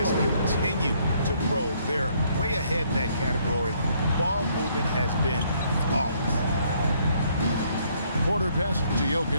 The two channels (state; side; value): inverted; both; correlation -0.67